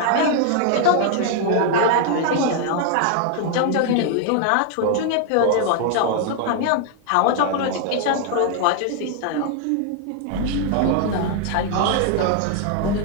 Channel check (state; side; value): different; both; correlation 0.00